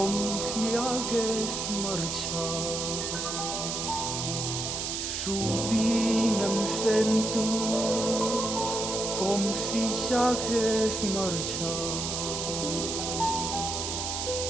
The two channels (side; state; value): right; noise; hiss, 3 dB below the sound